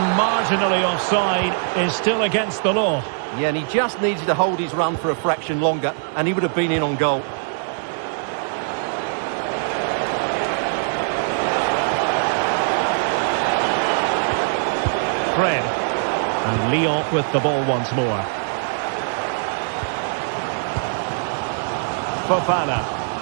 marginally offside is still against the law. Yeah, and he just needed to hold his run for a fraction longer, and he would have been in on goal. Fred. And Lyon with the ball once more. Fofana.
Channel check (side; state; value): left; silent; digital silence